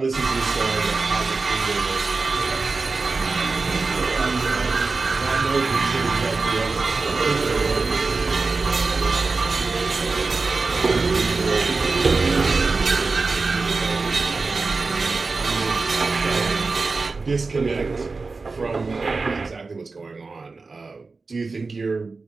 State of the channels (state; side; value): quieter; left; 4.0 dB